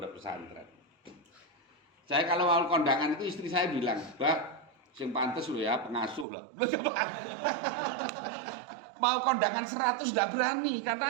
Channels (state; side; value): drops out; left; at 6.2 s